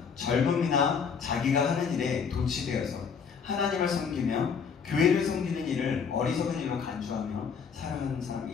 젊음이나 자기가 하는 일에 도취되어서 하나님을 섬기며 교회를 섬기는 일을 어리석은 일로 간주하며 살아가는 사람이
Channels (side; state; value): right; quieter; 6.3 dB